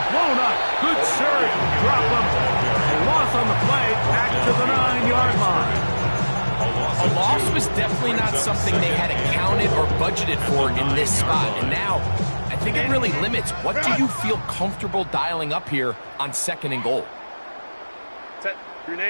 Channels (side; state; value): both; inverted; correlation -1.00